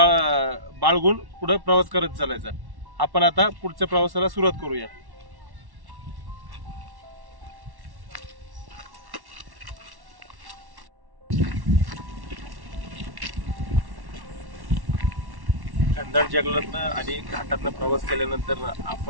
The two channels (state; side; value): late; left; 1.1 ms